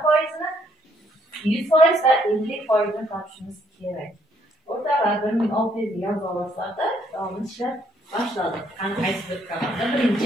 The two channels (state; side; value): normal; both; correlation 0.69